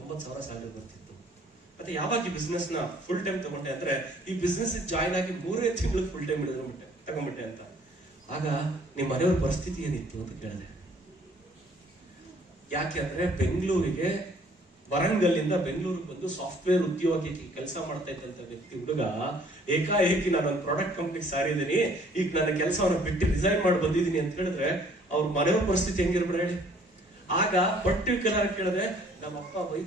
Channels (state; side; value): normal; both; correlation 0.58